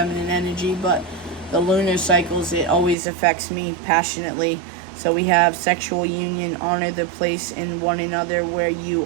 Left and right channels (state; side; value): drops out; left; at 3.0 s